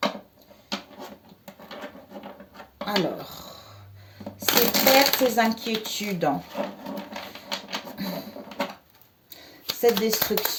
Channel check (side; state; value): both; identical; correlation 1.00